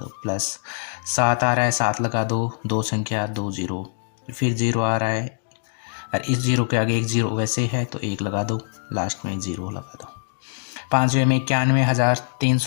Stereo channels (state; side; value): silent; right; digital silence